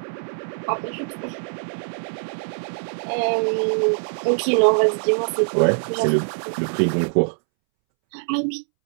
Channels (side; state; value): left; silent; 64 dB below the other